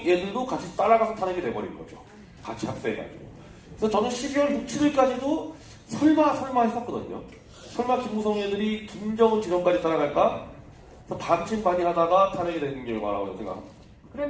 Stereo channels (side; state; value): both; identical; correlation 1.00